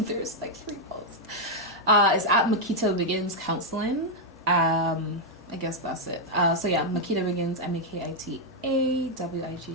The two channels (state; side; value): normal; both; correlation -0.01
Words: there's like 3 posts. It's at Makita Begins Counselling. I guess that's it. So yeah, Makita Wiggins,